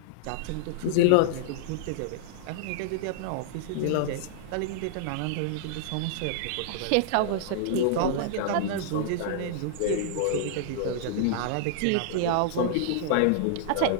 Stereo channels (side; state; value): both; different; correlation -0.01